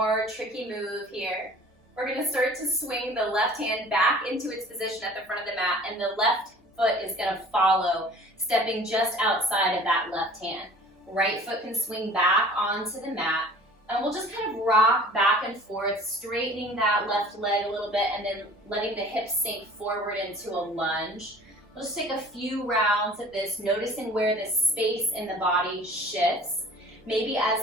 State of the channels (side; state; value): both; normal; correlation 0.47